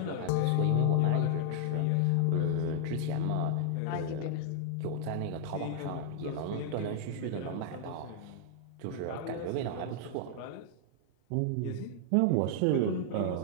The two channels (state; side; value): different; both; correlation -0.01